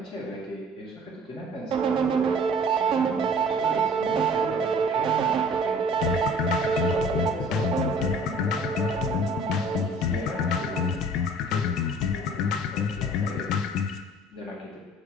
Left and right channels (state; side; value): normal; both; correlation 0.50